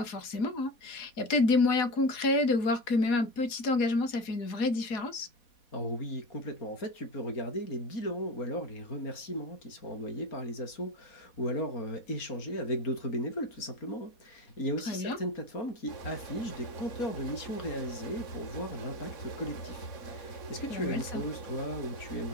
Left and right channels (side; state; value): right; late; 4.1 ms